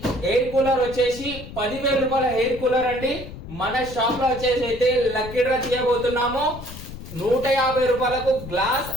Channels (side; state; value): left; noise; rumble, 12 dB below the sound